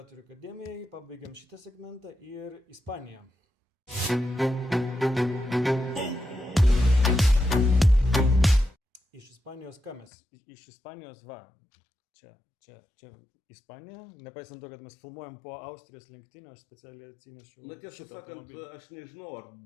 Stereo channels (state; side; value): drops out; right; at 10.1 s